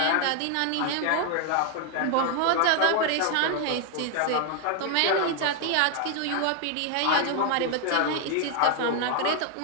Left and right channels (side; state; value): both; different; correlation 0.00